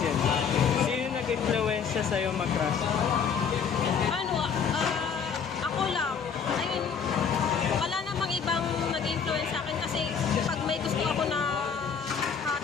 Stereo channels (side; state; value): right; quieter; 6.7 dB